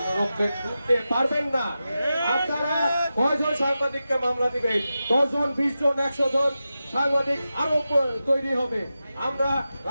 পারবেন না। আপনারা কয়জন সাংবাদিককে মামলা দিবেন? 10 জন, 20 জন, 100 জন সাংবাদিক আরো তৈরি হবে। আমরা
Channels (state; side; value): inverted; both; correlation -0.92